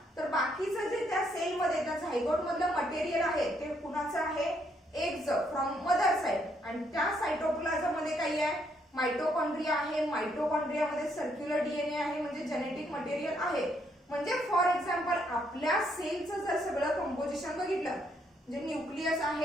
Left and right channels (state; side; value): normal; both; correlation 0.72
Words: तर बाकीचं जे त्या सेल मध्ये त्या झायगोट मधलं मटेरियल आहे ते कुणाचं आहे? एगचं, फ्रॉम मदर साइड. आणि त्या सायटोप्लाझम मध्ये काही आहे? माइटोकॉन्ड्रिया आहे. माइटोकॉन्ड्रिया मध्ये सर्क्युलर डीएनए आहे म्हणजे जेनेटिक मटेरियल आहे. म्हणजे फॉर एक्झाम्पल आपल्या सेलचं जर सगळं कंपोजिशन बघितलं, म्हणजे न्यूक्लियस